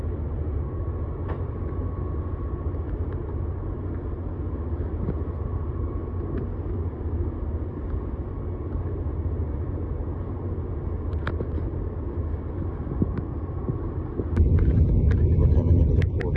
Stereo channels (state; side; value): identical; both; correlation 1.00